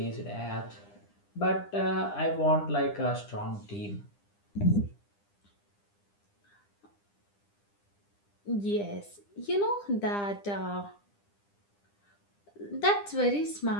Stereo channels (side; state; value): right; late; 9.9 ms